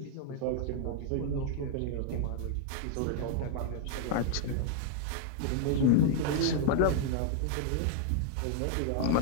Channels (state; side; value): different; both; correlation 0.00